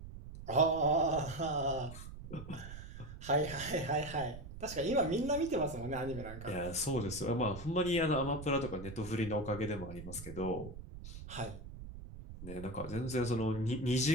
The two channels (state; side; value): noise; right; rumble, 12 dB below the sound